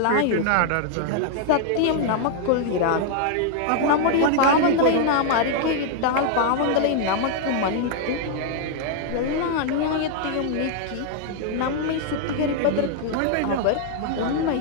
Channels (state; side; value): different; both; correlation 0.00